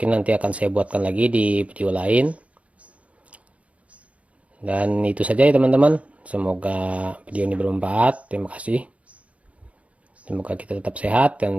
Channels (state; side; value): late; left; 0.065 ms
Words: nanti akan saya buatkan lagi di video lain. Dan itu saja ya teman-teman, semoga video ini bermanfaat. Terima kasih. Semoga kita tetap sehat